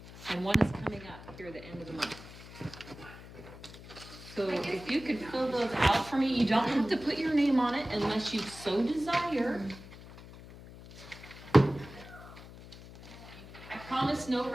and one is coming up here at the end of the month. So if you could fill those out for me, you don't have to put your name on it unless you so desire. I promise no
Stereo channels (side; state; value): left; noise; hum, 16 dB below the sound